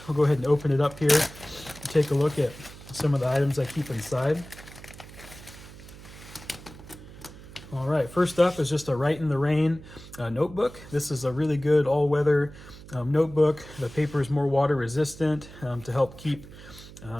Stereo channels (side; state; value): right; noise; hum, 17 dB below the sound